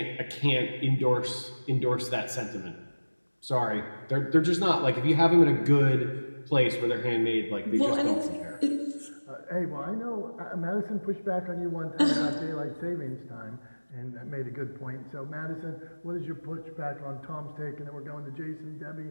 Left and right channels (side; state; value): both; inverted; correlation -1.00